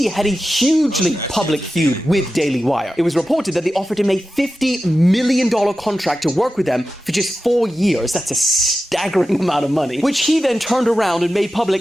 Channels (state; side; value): normal; both; correlation 0.92